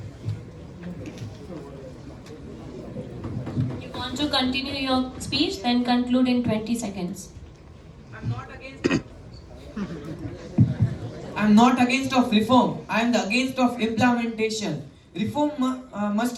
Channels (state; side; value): identical; both; correlation 1.00